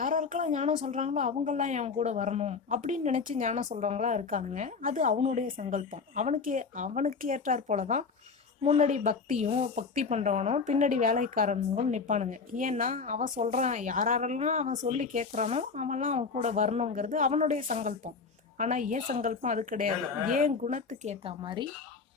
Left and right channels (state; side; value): quieter; right; 5.0 dB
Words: ஞானம் சொல்கிறாங்களோ அவங்கெல்லாம் என் கூட வரணும் அப்படின்னு நினச்சி ஞானம் சொல்கிறவங்களா இருக்கானுங்க. அது அவனுடைய சங்கல்பம். அவனுக்கு ஏற்றாற் போல தான் முன்னாடி பக்தி பண்ணுறவனும் பின்னாடி வேலைக்காரனுங்களும் நிற்பானுங்க. ஏன்னா அவன் சொல்கிறான், யாரெல்லாம் அவன் சொல்லி கேட்குறானோ அவன்லாம் அவன் கூட வரணுங்கிறது அவனுடைய சங்கல்பம். ஆனால் ஏன் சங்கல்பம் அது கிடையாது. ஏன் குணத்துக்கு ஏற்ற மாதிரி